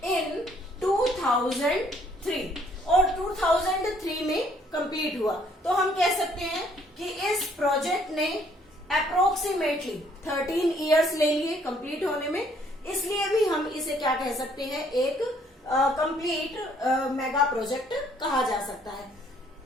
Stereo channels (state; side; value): normal; both; correlation 0.64